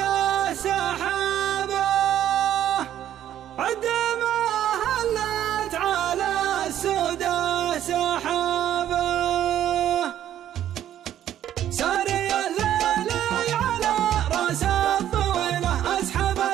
سحابة عد ما هلت على السودة سحابة ساري الليل على راس الطويلة اسحب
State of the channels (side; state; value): left; quieter; 11.4 dB